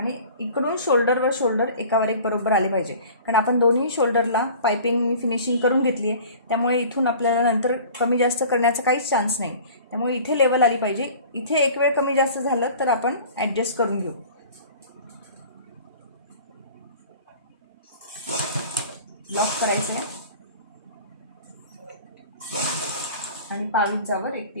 इकडून शोल्डरवर शोल्डर एकावर एक बरोबर आले पाहिजे. कारण आपण दोन्ही शोल्डरला पायपिंग फिनिशिंग करून घेतली आहे, त्यामुळे इथून आपल्याला नंतर कमी जास्त करण्याचा काहीच चान्स नाही. त्यामुळे इथे लेवल आली पाहिजे. इथे एक वेळ कमी जास्त झालं तर आपण ॲडजस्ट करून घेऊ. लॉक करायचं आहे आणि 22 एक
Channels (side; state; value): both; inverted; correlation -0.44